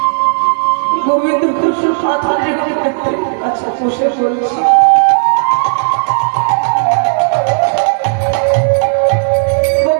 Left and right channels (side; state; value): left; silent; digital silence